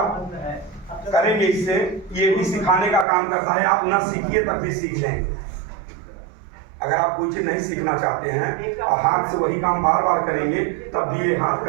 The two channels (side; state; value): left; drops out; at 3.1 s